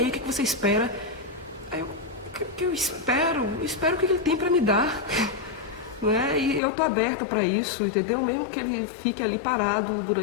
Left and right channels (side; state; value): right; drops out; at 6.6 s